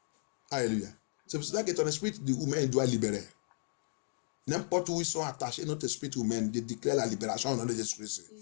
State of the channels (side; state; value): right; silent; 55 dB below the other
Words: Alléluia. C'est pour cela que ton esprit humain doit libérer. N'importe où ils sont attachés, notre esprit humain, de déclarer la libération au nom de Jésus-Christ.